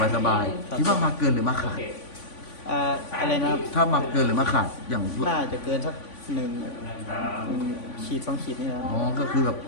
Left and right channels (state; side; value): late; right; 3.5 ms